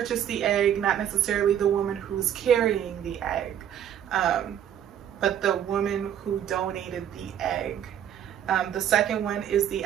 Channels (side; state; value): left; quieter; 9.9 dB